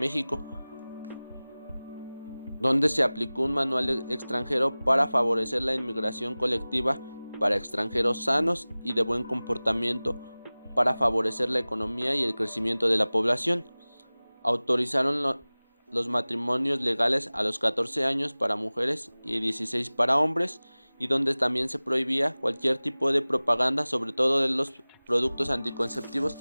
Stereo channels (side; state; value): both; inverted; correlation -0.99